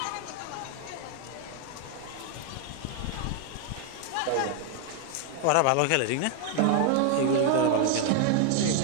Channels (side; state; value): both; different; correlation 0.00